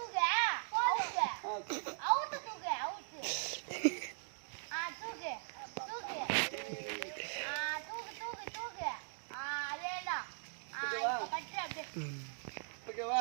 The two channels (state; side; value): silent; left; digital silence